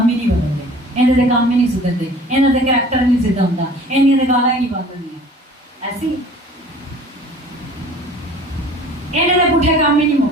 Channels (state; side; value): normal; both; correlation 0.47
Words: ہی نہیں بدلتے، انہیں تو کام ہی نہیں سدھرتے، انہیں تو کریکٹر نہیں سیدھا ہوتا، انہیں تو گالا ہی نہیں بات کرنی ہے. ایسی انہیں تو پوٹھے کام ہی نہیں